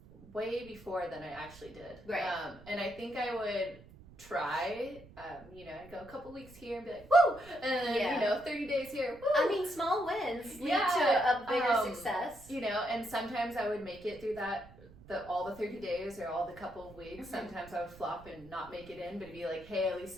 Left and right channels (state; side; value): noise; right; rumble, 21 dB below the sound